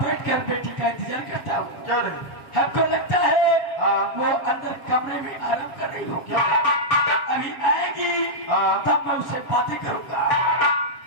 बैठकर बेटी का इंतजार करता हूँ। हमको लगता है वो अंदर कमरे में आराम कर रही होगी। अभी आएगी तब मैं उससे बातें करूंगा।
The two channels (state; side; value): late; right; 7.0 ms